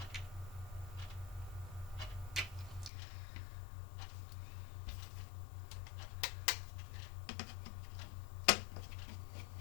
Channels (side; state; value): right; drops out; at 2.9 s